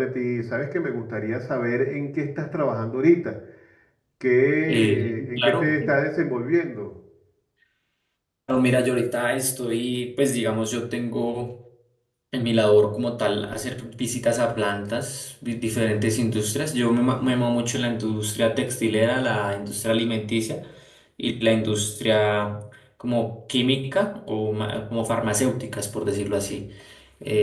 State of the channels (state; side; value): identical; both; correlation 1.00